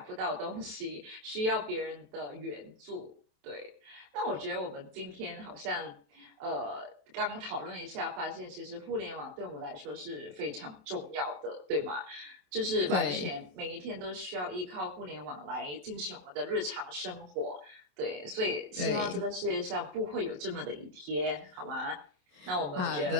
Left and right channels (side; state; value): left; late; 27 ms